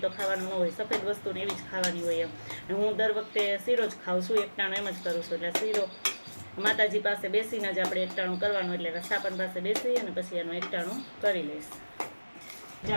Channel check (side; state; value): both; inverted; correlation -1.00